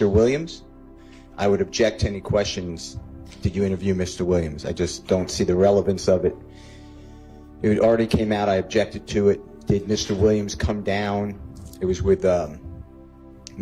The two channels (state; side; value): identical; both; correlation 1.00